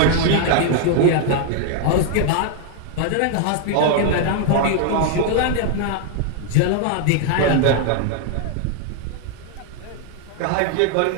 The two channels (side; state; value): both; different; correlation 0.00